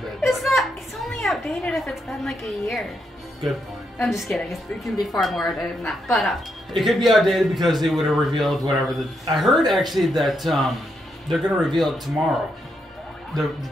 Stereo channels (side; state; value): both; normal; correlation 0.80